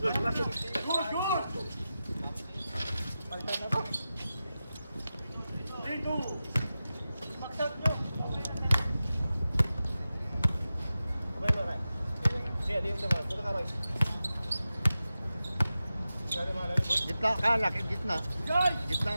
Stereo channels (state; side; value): inverted; both; correlation -0.93